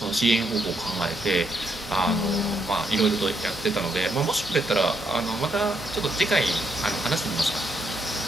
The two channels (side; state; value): both; normal; correlation 0.76